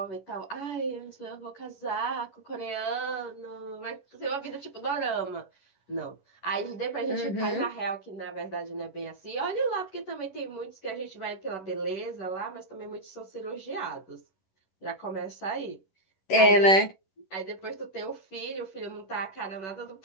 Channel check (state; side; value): late; right; 11 ms